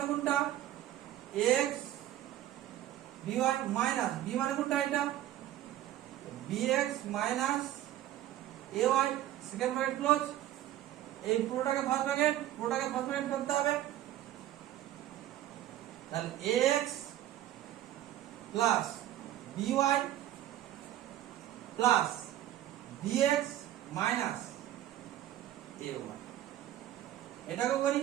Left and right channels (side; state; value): left; quieter; 13.1 dB